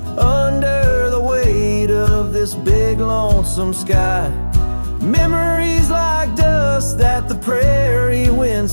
under the weight of this big lonesome sky. Memories like dust that the prairie wind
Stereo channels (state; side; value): inverted; both; correlation -1.00